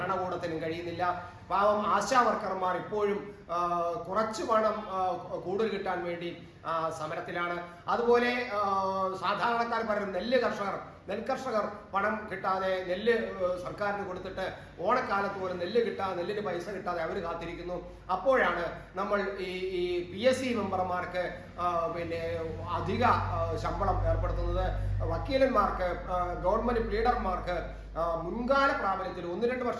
കഴിയുന്നില്ല. പാവം ആശാ വർക്കർമാർ ഇപ്പോഴും കുറച്ചു പണം കൂടുതൽ കിട്ടാൻ വേണ്ടി സമരത്തിലാണ്. അതുപോലെ സാധാരണക്കാർ പറയുന്ന നെൽകർഷകർ പണം കിട്ടാതെ, നെല്ല് സർക്കാരിന് കൊടുത്തിട്ട് ഓണക്കാലത്ത് പോലും നെല്ലിന് പൈസ കിട്ടാതെ അവർ കാത്തിരിക്കുന്നു. അപ്പോഴാണ് നമ്മൾ ഈ PSC മെമ്പർമാർക്ക് അധിക ശമ്പളം ഏർപ്പെടുത്തുന്നത്. വക്കീലന്മാർക്ക്, ഗവൺമെന്റ് പ്ലീഡർമാർക്ക് മുൻകാല പ്രാബല്യത്തിൽ 1-2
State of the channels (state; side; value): identical; both; correlation 1.00